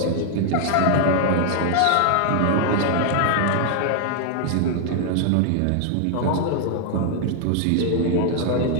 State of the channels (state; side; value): different; both; correlation 0.00